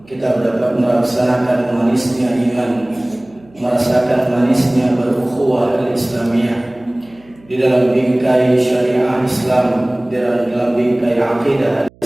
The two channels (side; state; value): right; noise; hum, 28 dB below the sound